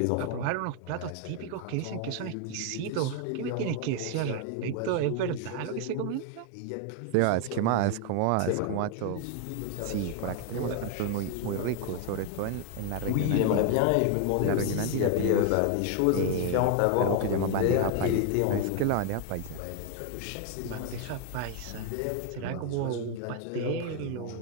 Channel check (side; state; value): both; different; correlation 0.01